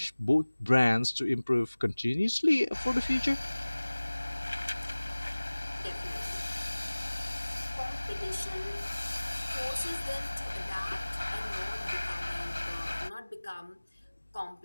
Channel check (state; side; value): inverted; both; correlation -1.00